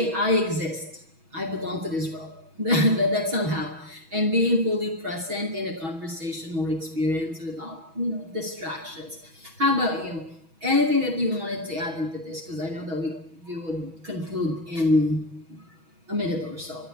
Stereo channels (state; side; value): late; left; 6.2 ms